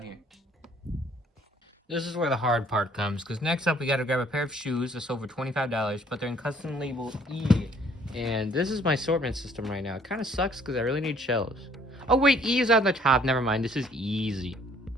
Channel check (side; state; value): both; normal; correlation 0.60